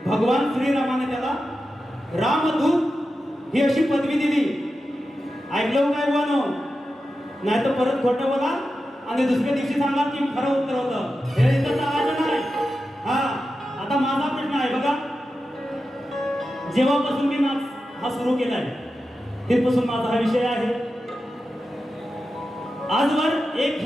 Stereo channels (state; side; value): normal; both; correlation 0.91